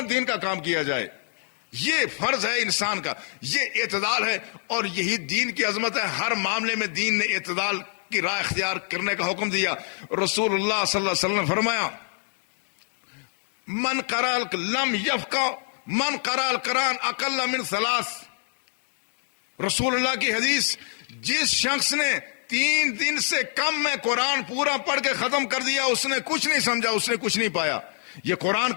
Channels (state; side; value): silent; right; digital silence